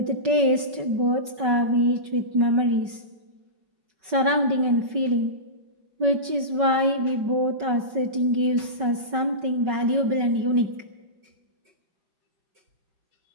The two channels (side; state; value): left; late; 5.3 ms